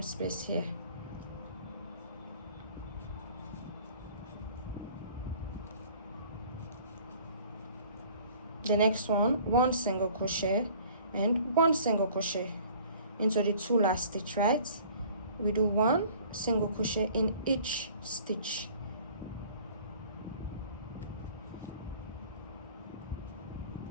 space here. The next one, 1 single crochet and 1 single crochet into the 2 last stitch, right? We do 1 single crochet in each stitch.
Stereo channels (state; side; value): inverted; both; correlation -0.51